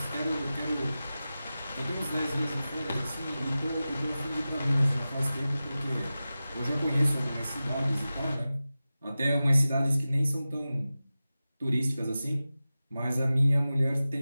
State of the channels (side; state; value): both; inverted; correlation -0.95